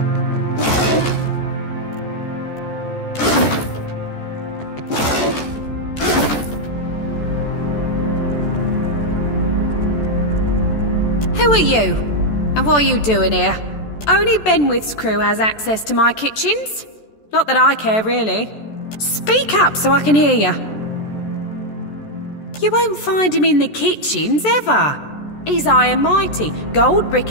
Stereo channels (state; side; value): late; right; 14 ms